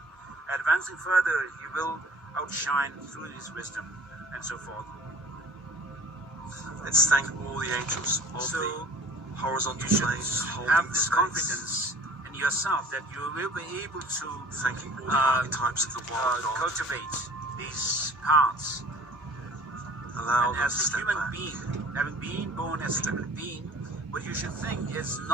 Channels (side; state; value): both; normal; correlation 0.47